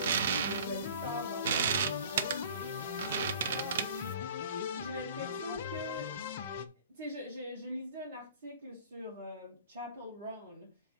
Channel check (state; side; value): inverted; both; correlation -0.46